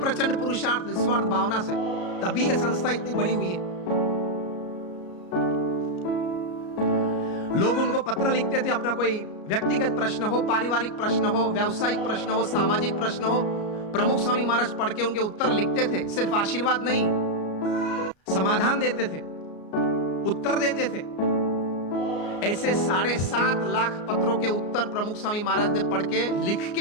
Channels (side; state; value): right; late; 33 ms